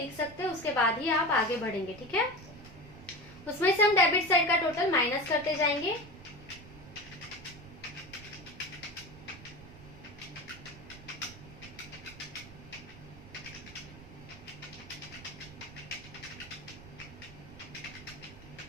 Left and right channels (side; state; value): right; noise; rumble, 17 dB below the sound